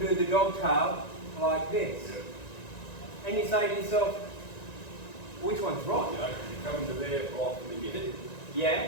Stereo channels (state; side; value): late; right; 1.9 ms